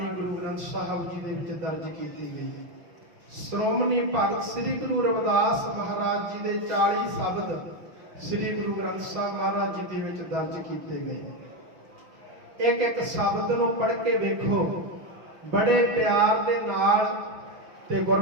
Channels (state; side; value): late; left; 6.4 ms